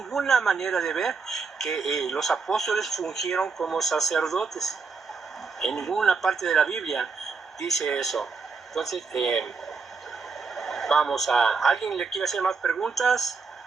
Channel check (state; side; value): quieter; left; 4.8 dB